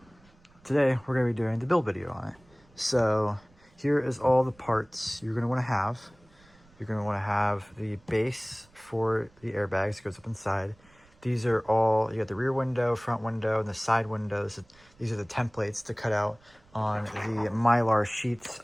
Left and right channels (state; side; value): noise; right; rumble, 29 dB below the sound